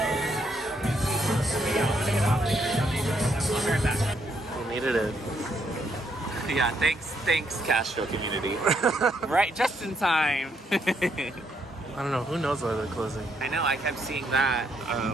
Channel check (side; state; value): both; normal; correlation 0.74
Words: I'll be right back. We needed it. Yeah, thanks Castro community. Right, just in time. I don't know. Who knows why they're closing? I know, I kept seeing that.